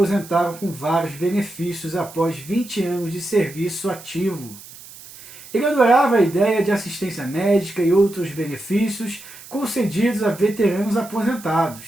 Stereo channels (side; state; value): right; noise; hiss, 18 dB below the sound